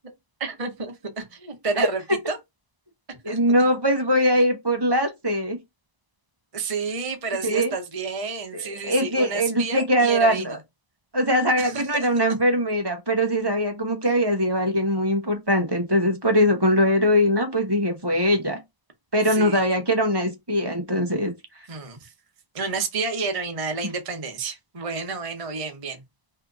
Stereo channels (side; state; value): left; late; 1.0 ms